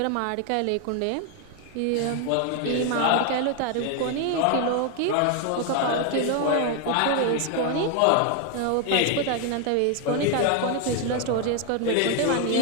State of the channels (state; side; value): different; both; correlation 0.01